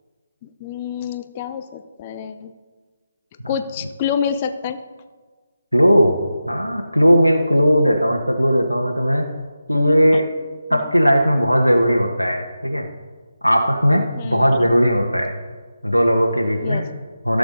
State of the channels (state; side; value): inverted; both; correlation -0.92